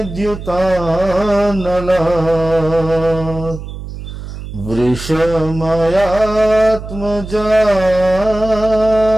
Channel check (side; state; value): right; noise; hum, 10 dB below the sound